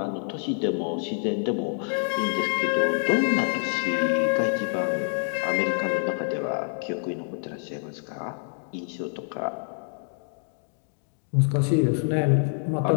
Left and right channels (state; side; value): silent; right; digital silence